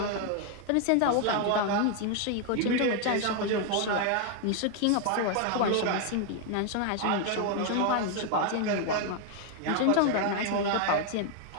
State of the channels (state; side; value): different; both; correlation 0.00